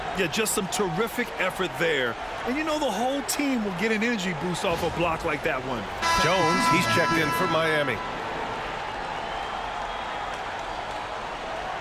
Yeah, just some terrific effort there. And you know the whole team will get an energy boost off a block like that one. Jones, he's checked in for Miami.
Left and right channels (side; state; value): both; identical; correlation 1.00